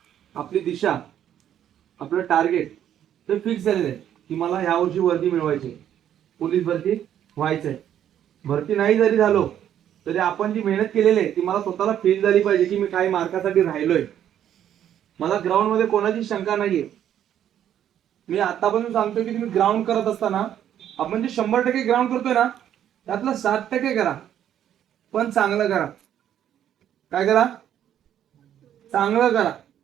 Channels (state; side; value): quieter; left; 10.4 dB